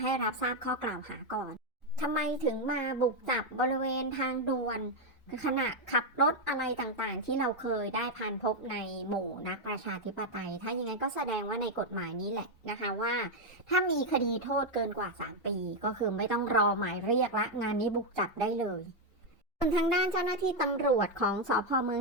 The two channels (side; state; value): both; normal; correlation 0.03